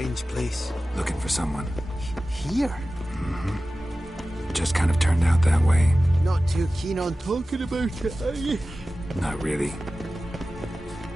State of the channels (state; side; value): normal; both; correlation 0.95